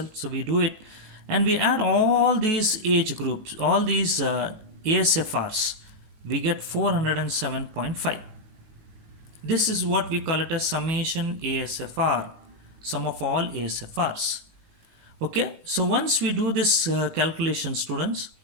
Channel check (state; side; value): late; left; 19 ms